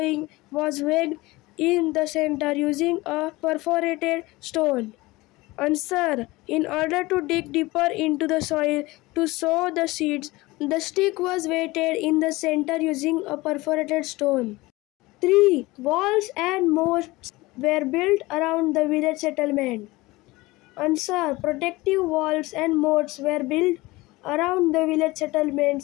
was wedged in the center using a perforated stone. Answer. In order to dig deeper into the soil to sow the seeds, the stick was weighted in the center using a perforated stone. 3. Walls and moats were built around the village settlement. Answer. Protective walls and moats were built around the village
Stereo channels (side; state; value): right; quieter; 20.9 dB